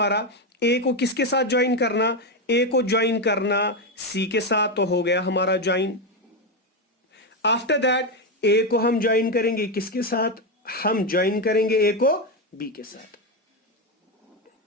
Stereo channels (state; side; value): normal; both; correlation 0.09